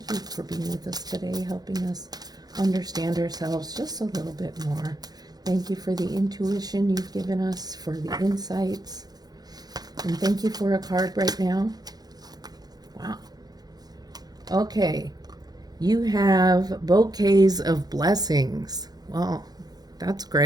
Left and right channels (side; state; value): left; late; 0.19 ms